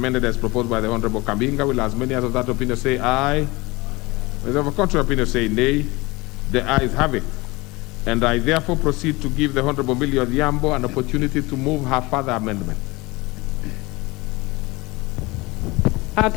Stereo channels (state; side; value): quieter; right; 23.1 dB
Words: as proposed by the Honorable Kabinga. Will as many as of that opinion say aye? Those of a contrary opinion say nay. The ayes have it. And I therefore proceed to give the Honorable Millie Odhiambo an opportunity to move her further amendment.